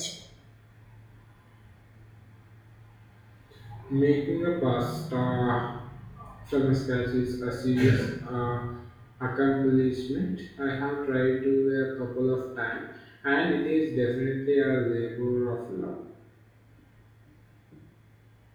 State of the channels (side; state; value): both; identical; correlation 1.00